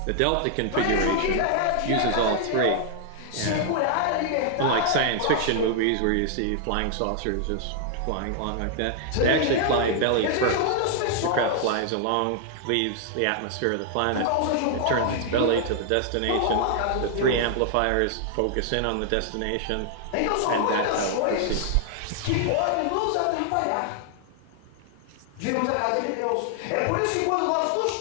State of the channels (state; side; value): different; both; correlation 0.00